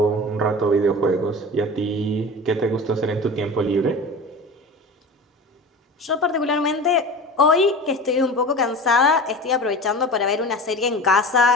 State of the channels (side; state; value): both; normal; correlation 0.34